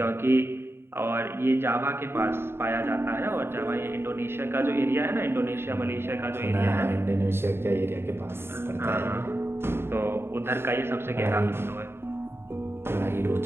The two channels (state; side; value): late; left; 0.11 ms